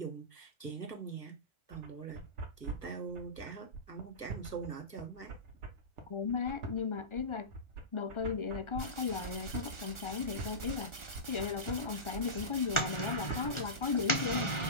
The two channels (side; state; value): right; late; 1.4 ms